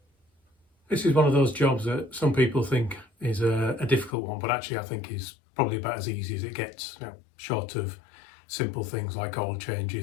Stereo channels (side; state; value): right; drops out; at 4.1 s